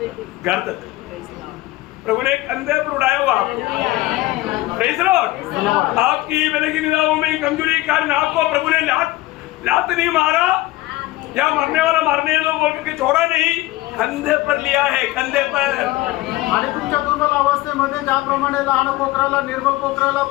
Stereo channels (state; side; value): quieter; right; 18.2 dB